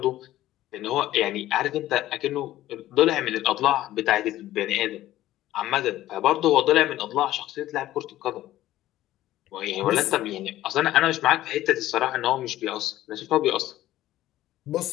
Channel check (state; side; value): quieter; right; 14.6 dB